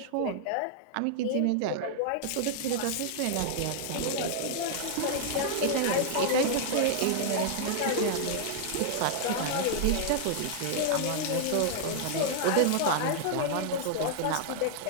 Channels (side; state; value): both; different; correlation -0.01